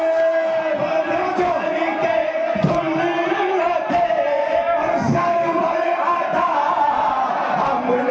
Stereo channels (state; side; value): identical; both; correlation 1.00